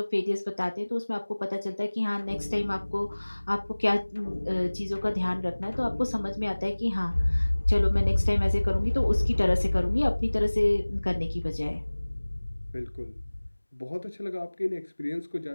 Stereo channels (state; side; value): inverted; both; correlation -1.00